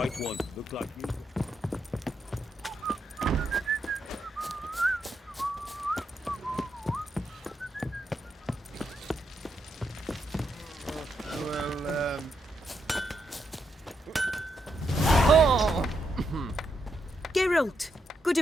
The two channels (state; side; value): normal; both; correlation 0.81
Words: one. Look like you. Well, Oh! Geralt, good